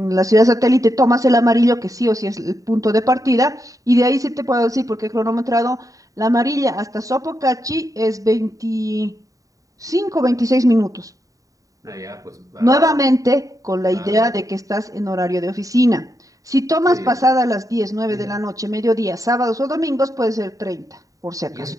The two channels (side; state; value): left; late; 0.16 ms